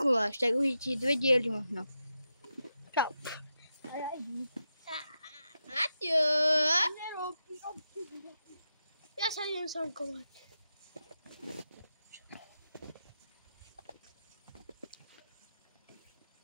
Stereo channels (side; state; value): both; inverted; correlation -0.87